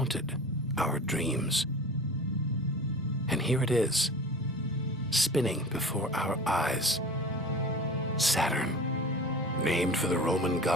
our dreams. And here it is, spinning before our eyes. Saturn, named for the Roman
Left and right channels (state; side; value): normal; both; correlation 0.37